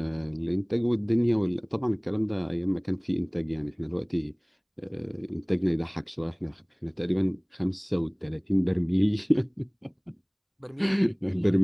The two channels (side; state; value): both; identical; correlation 1.00